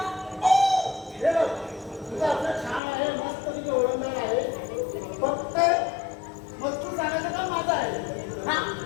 हे बघ, तुझं अर्ज छान आहे, मस्त तुझी ओळखदार आहे. फक्त मजकूर सांगायचं काम माझं आहे.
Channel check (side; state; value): right; drops out; at 2.8 s